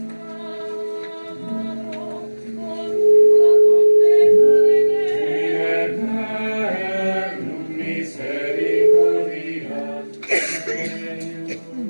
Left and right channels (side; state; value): both; inverted; correlation -1.00